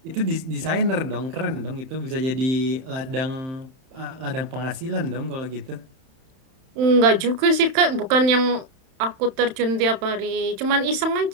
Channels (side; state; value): left; late; 31 ms